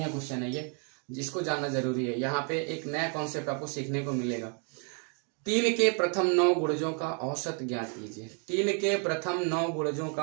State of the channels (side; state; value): left; quieter; 39.2 dB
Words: क्वेश्चन है ये, जिसको जानना जरूरी है। यहाँ पे एक नया कॉन्सेप्ट आपको सीखने को मिलेगा। 3 के प्रथम 9 गुणजों का औसत ज्ञात कीजिए। 3 के प्रथम 9 गुणजों